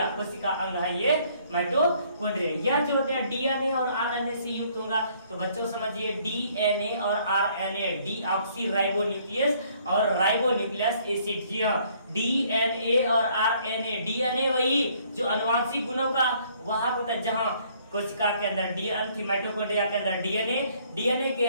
कोशिका अंग है ये माइटोकॉन्ड्रिया। यह जो होते हैं डीएनए और आरएनए से युक्त होगा। तो बच्चों समझिए, डीएनए और आरएनए, डीऑक्सी राइबोन्यूक्लियस और राइबोन्यूक्लियस एसिड। जी हाँ, डीएनए और आरएनए, डीएनए वही जो आनुवांशिक गुणों का वाहक होता है, जहां कोशिका के अंदर डीएनए, माइटोकॉन्ड्रिया के अंदर डीएनए के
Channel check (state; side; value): inverted; both; correlation -0.63